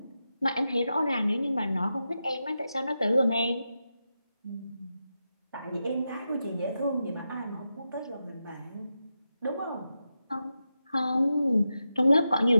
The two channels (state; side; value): inverted; both; correlation -0.89